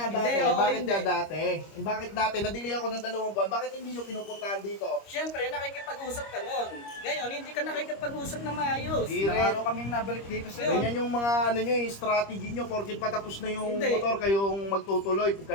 Hindi, dati? oo, Bakit hindi. nga dati? Bakit dati? Na-delay ako ng 2 buwan. Bakit hindi nyo pinupuntahan dito? Siyempre, nakikipag-usap ka nun. Ngayon, hindi ka nakikipag-usap na maayos. Di Ilang rin. araw kaming nabalik dito sa Ganyan yung mga ano nyo, yung strategy nyo. Porket patapos na yung Hindi. motor, kayong magtutuloy.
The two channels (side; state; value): right; late; 25 ms